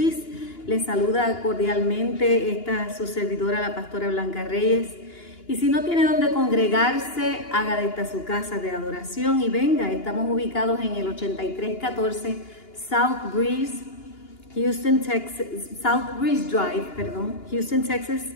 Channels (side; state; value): right; late; 2.9 ms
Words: Les saluda cordialmente su servidora, la pastora Blanca Reyes. Y si no tiene donde congregarse, haga de esta su casa de adoración y venga. Estamos ubicados en el 8314 South Breeze Drive, Houston, Texas